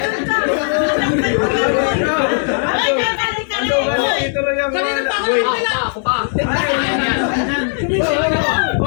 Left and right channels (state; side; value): silent; right; 67 dB below the other